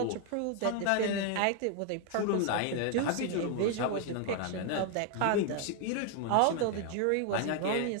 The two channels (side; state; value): both; different; correlation 0.01